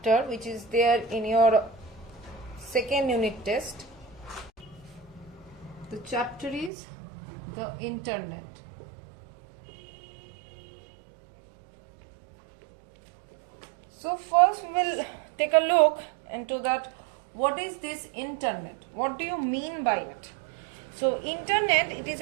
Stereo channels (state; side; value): drops out; left; at 6.7 s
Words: which is there in your second unit test. The chapter is the internet. So first we will take a look into that. What is this internet? What do you mean by it? So internet, it is